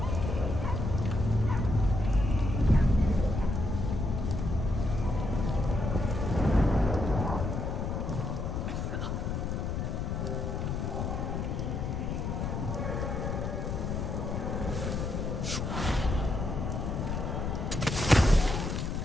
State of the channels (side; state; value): left; noise; rumble, 2 dB below the sound